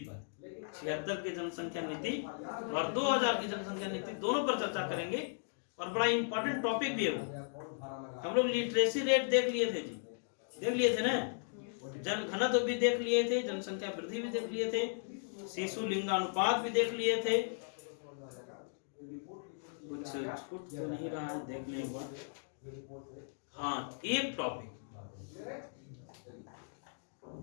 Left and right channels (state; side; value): silent; right; digital silence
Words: 76 की जनसंख्या नीति और 2000 की जनसंख्या नीति, दोनों पर चर्चा करेंगे। और बड़ा इंपॉर्टेंट टॉपिक भी है वो। हम लोग लिटरेसी रेट देख लिए थे जी, देख लिए थे ना, जनघनत्व भी देख लिए थे, जनसंख्या वृद्धि भी देख लिए थे, शिशु लिंगानुपात भी देख लिए थे। कुछ छूट तो नहीं रहा है, देख लें एक बार। हाँ, एक टॉपिक,